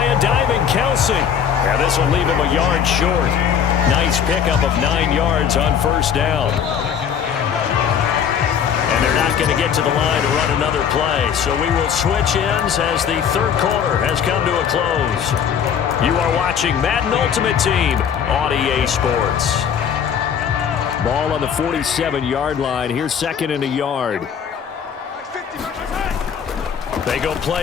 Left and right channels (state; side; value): quieter; right; 8.0 dB